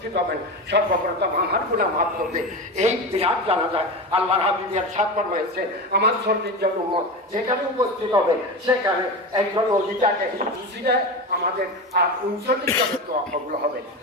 হবেন, সর্বপ্রথম আমার গুনাহ মাফ করবে। এই বিরাট জানাজায় আল্লাহর হাবিব ইরশাদ ফরমাইছে, আমার সর্বজন উম্মত যেখানে উপস্থিত হবে সেখানে একজন ওলিটাকে খুশিতে আমাদের আর 39 জনের দোয়া কবুল হবে।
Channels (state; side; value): normal; both; correlation 0.23